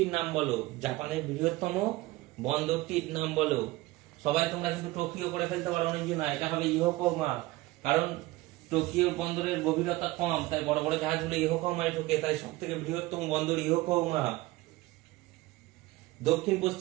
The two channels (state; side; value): quieter; left; 19.3 dB